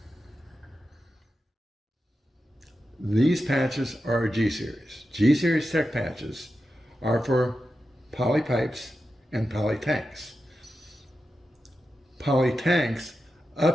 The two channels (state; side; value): normal; both; correlation 0.90